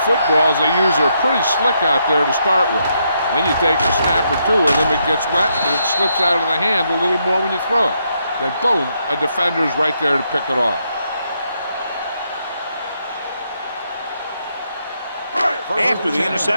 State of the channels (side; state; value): both; inverted; correlation -0.77